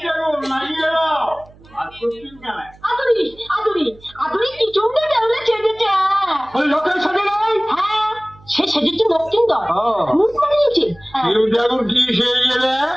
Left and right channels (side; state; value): right; noise; hum, 25 dB below the sound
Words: সে সেজেছে দক্ষিণদর মুখ বানিয়েছে। কি সেই গেলে